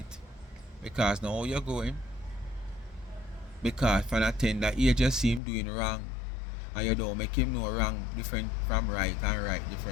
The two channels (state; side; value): drops out; right; at 5.4 s